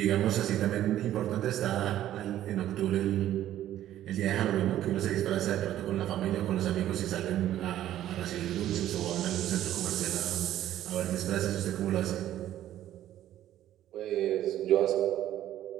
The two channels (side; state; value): left; quieter; 12.5 dB